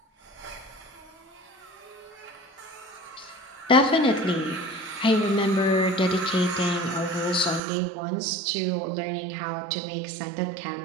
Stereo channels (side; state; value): left; drops out; at 7.6 s